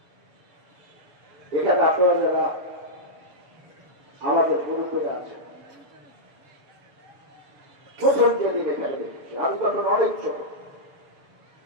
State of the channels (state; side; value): late; left; 6.9 ms